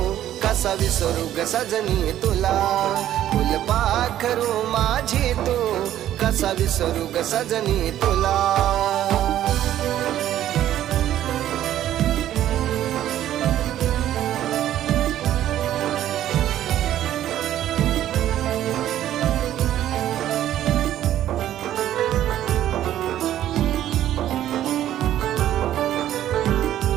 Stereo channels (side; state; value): left; quieter; 12.2 dB